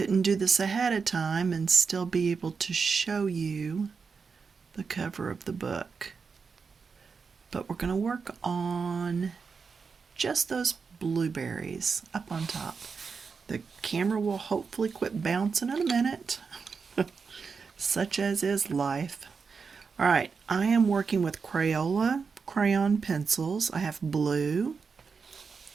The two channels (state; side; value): quieter; left; 5.3 dB